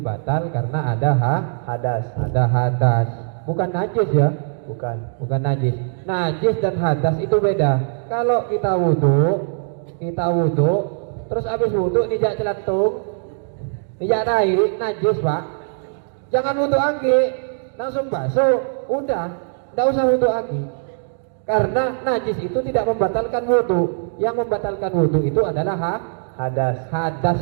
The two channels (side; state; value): left; silent; digital silence